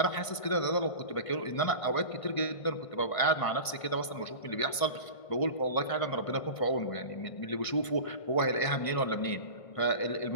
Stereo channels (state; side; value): late; right; 1.5 ms